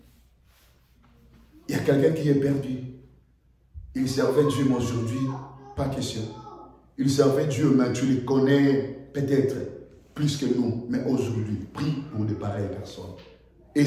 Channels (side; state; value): both; identical; correlation 1.00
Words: Il y a quelqu'un qui est perdu. Il servait Dieu, mais aujourd'hui, pas question. Il servait Dieu, mais tu le connais peut-être plus que nous. Mais aujourd'hui, prie pour de pareilles personnes. Et